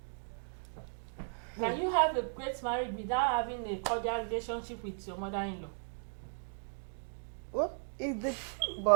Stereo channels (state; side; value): silent; left; digital silence